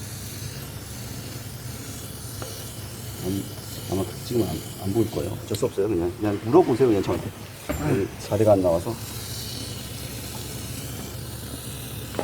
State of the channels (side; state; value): both; identical; correlation 1.00